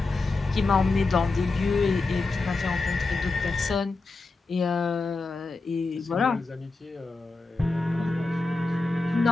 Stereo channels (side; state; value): right; quieter; 3.6 dB